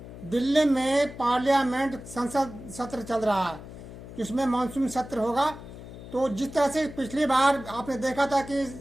दिल्ली में पार्लियामेंट संसद सत्र चल रहा है, जिसमें मानसून सत्र होगा। तो जिस तरह से पिछली बार आपने देखा था कि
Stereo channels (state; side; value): noise; left; hum, 14 dB below the sound